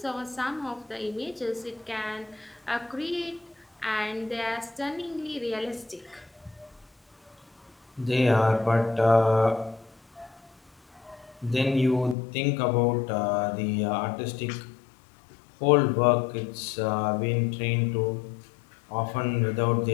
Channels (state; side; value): drops out; right; at 12.2 s